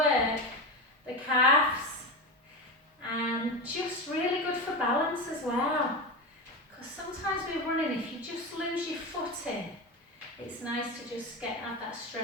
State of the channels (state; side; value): normal; both; correlation 0.20